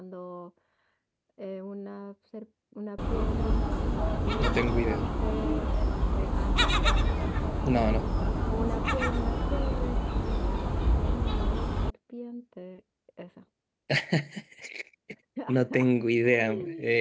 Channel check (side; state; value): both; identical; correlation 1.00